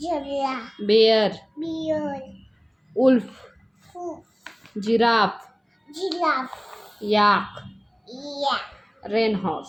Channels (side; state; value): both; identical; correlation 1.00